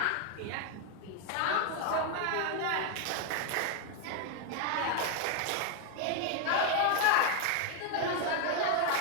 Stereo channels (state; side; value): different; both; correlation 0.01